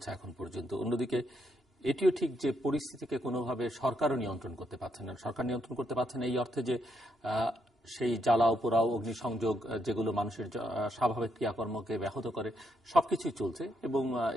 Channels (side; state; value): both; normal; correlation 0.77